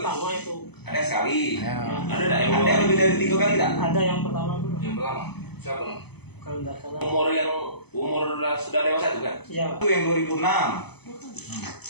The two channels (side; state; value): right; late; 0.98 ms